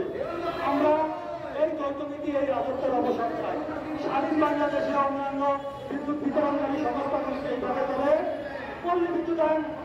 আমরা এই যৌথনীতি, এই রাজত্বের অবসান চাই। স্বাধীন বাংলাদেশে অন্যান্য বিদ্যুৎ বিতরণকারী সংস্থাগুলিকে এইভাবে করে পল্লী বিদ্যুতায়ন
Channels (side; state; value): both; identical; correlation 1.00